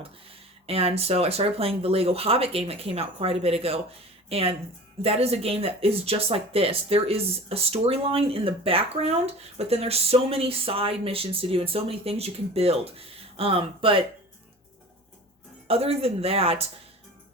And so I started playing the Lego Hobbit game that came out quite a bit ago. And that is a game that is just like this. There is a storyline in the background, but then there's so many side missions to do and so many things you can build. But other than that,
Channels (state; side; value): normal; both; correlation 0.39